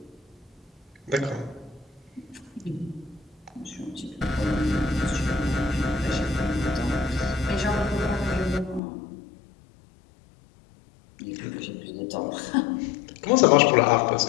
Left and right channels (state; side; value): drops out; right; at 8.8 s